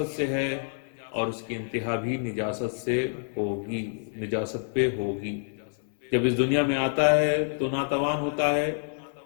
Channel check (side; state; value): right; silent; 60 dB below the other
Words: سے ہے اور اس کی انتہا بھی نجاست سے ہوگی، نجاست پہ ہوگی۔ جب اس دنیا میں آتا ہے تو ناتوان ہوتا ہے،